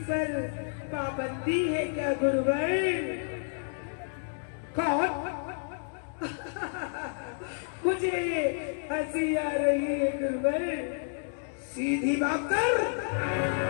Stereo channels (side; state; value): right; silent; digital silence